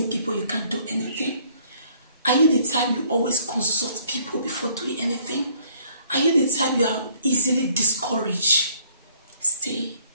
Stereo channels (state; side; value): inverted; both; correlation -0.61